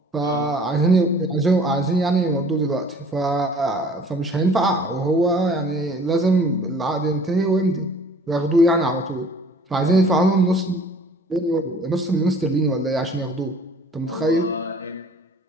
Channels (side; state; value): both; normal; correlation 0.52